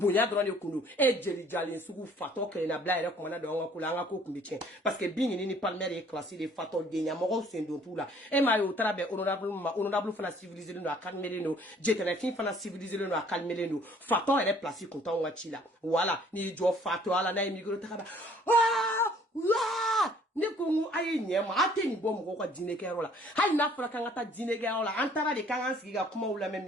dron ne kundu e jeli jali sugu fato kele na bla ere kuma na do nga kula nga ko kumbi chen parce que bingi ni palmer e classé de fato de nya moko sendo tout la e ma yo trabe honorable fana civilisé no akalmele no fin fana civilisé no akalmele no fato ere place content wati la voilà ni jo fato ala na imigro takaba ne ko ayi nyema ate ni bom ko dine ke rola hay na fura kan ata dine ke rola antara de kan ansi ga kuma wula me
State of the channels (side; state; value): both; normal; correlation 0.58